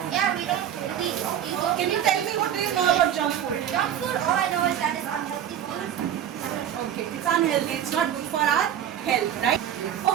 Yeah, we don't really. Can you tell me what do you know about junk food? Junk food, all I know is that it's unhealthy food. Okay, it's unhealthy. It's not good for our health, right?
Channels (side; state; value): left; quieter; 10.1 dB